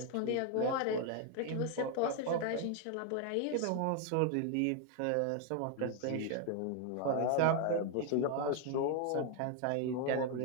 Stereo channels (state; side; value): different; both; correlation 0.01